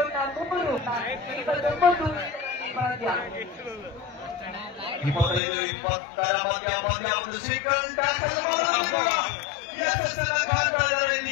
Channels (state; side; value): drops out; right; at 5.4 s